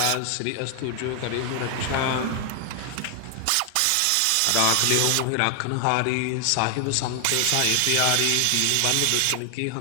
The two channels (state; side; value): different; both; correlation 0.00